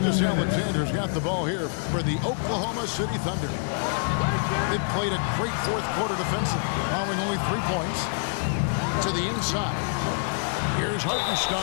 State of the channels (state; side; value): silent; right; digital silence